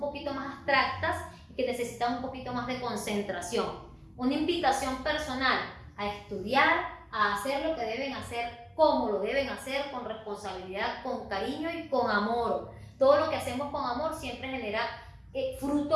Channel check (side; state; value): both; identical; correlation 1.00